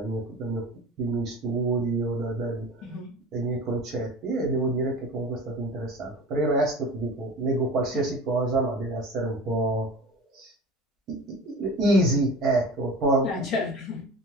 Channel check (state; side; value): normal; both; correlation 0.36